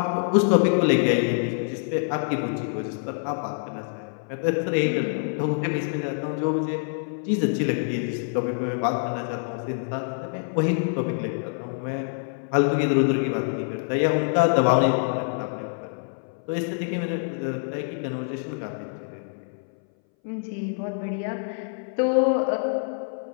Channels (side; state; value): right; silent; 60 dB below the other